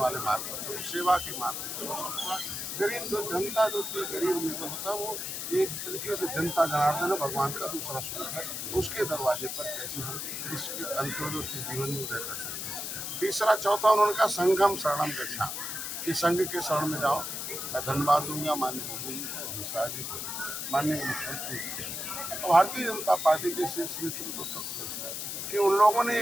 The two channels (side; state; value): left; noise; hiss, 4 dB below the sound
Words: मार्ग पर चलो, सेवा के मार्ग पर चलो। सबका गरीब जो जनता जो थी, गरीब में होता है वो एक तरीके से जनता जनार्दन है, भगवान का दूसरा स्वरूप है। उसके दरवाजे पर कैसे हम इसके अंत्योदय उसके जीवन में उदय कर सकते हैं। तीसरा चौथा उन्होंने कहा संघम शरणम गच्छामि, कि संघ के शरण में जाओ। मैं धन्यवाद दूंगा माननीय मोदी अमित शाह जी को, माननीय मुख्यमंत्री भारतीय जनता पार्टी के शीर्ष नेतृत्व कि उन लोगों ने